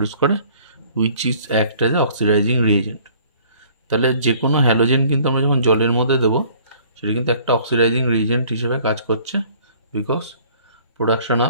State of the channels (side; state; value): both; inverted; correlation -0.54